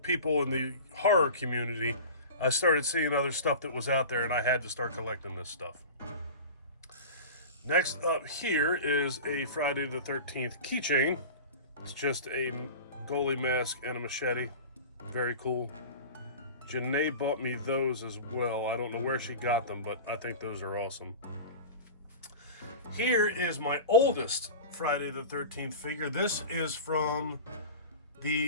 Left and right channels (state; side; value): inverted; both; correlation -0.33